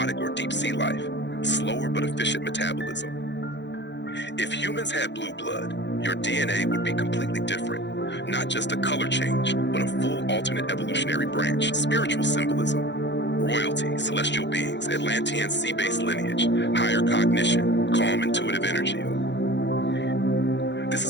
or deep sea life, slower but efficient metabolism. If humans had blue blood, your DNA would be completely different. Not just a color change, but a full alternate evolutionary branch. Spiritual symbolism: royalty, celestial beings, Atlantean sea-based lineage, higher cognition, calm intuitive energy. This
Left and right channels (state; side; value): late; right; 0.52 ms